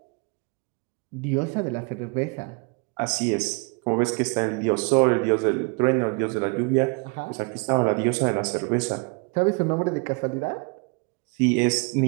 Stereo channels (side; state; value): left; quieter; 31.9 dB